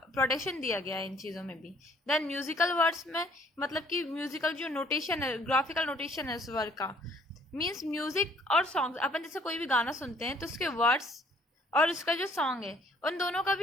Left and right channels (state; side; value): normal; both; correlation 0.60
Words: प्रोटेक्शन दिया गया है इन चीज़ों में भी। देन म्यूजिकल वर्ड्स में, मतलब कि म्यूजिकल जो नोटेशन है, ग्राफिकल नोटेशन है उस वर्ड का, मीन्स म्यूजिक और सॉन्ग, अपन जैसे कोई भी गाना सुनते हैं तो उसके वर्ड्स और उसका जो सॉन्ग है उन दोनों का